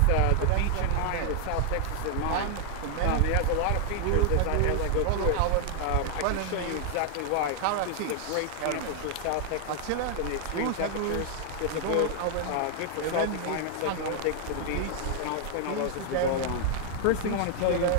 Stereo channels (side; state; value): both; different; correlation 0.00